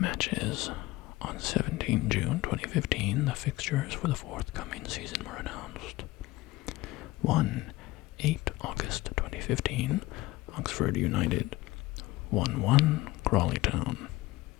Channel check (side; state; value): right; quieter; 18.9 dB